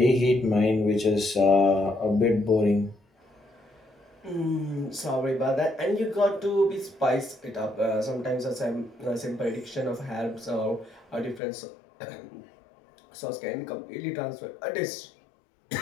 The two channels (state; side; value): drops out; right; at 11.4 s